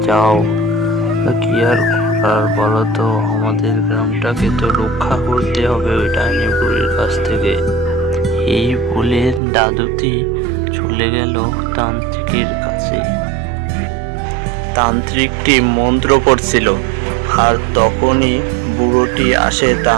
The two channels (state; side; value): drops out; left; at 9.4 s